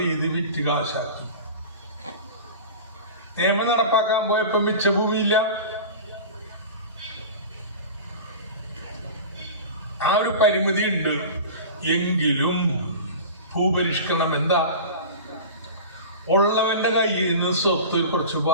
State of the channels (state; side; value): inverted; both; correlation -0.33